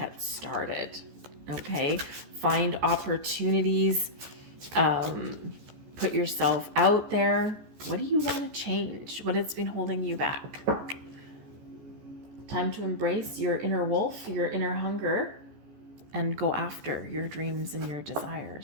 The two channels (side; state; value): left; late; 14 ms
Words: started. Okay, find opportunities, put yourself out there. What do you want to change? What has been holding you back? Time to embrace your inner wolf, your inner hunger, and go after your dreams and your